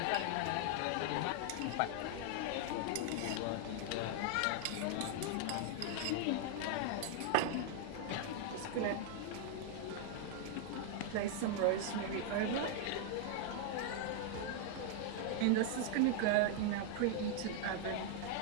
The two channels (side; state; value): both; different; correlation 0.00